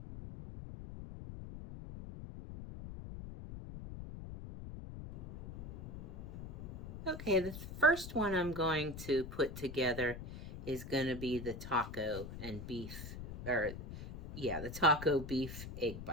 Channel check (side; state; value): left; noise; rumble, 10 dB below the sound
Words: Okay, the first one I'm going to put together is going to be the taco and beef, the taco beef egg